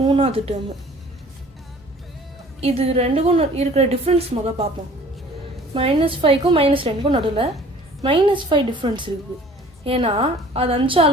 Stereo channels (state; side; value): normal; both; correlation 0.50